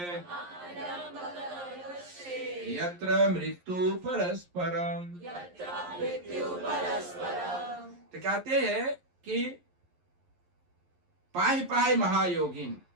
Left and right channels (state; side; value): late; left; 11 ms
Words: यत्र मृत्यु परस्परम। यत्र मृत्यु परस्परम। तो कहते हैं कि पाहि पाहि महायोगीन,